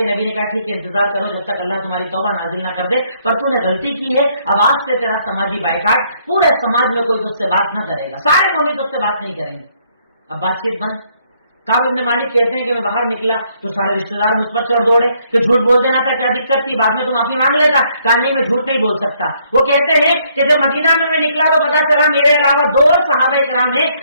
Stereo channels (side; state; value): both; inverted; correlation -0.69